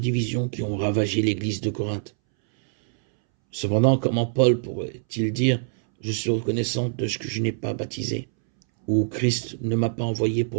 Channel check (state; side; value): silent; left; 62 dB below the other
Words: qui ont ravagé l'église de Corinthe. Cependant, comment Paul pourrait-il dire « Je suis reconnaissant de ce que je n'ai pas baptisé » ou « Christ ne m'a pas envoyé